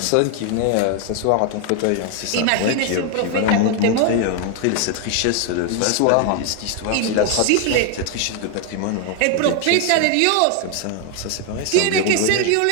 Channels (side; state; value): both; different; correlation 0.01